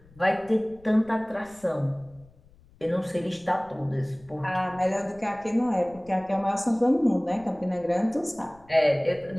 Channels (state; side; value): noise; left; rumble, 27 dB below the sound